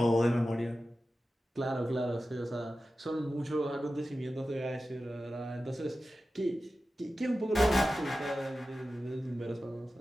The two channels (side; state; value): both; normal; correlation 0.94